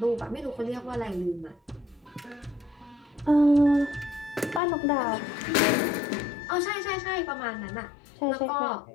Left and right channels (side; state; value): right; drops out; at 4.6 s